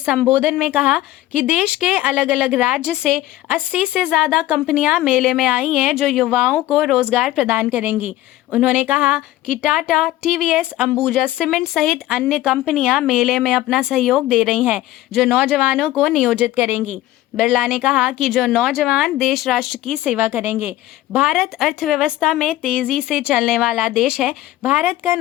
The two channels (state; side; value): quieter; right; 15.5 dB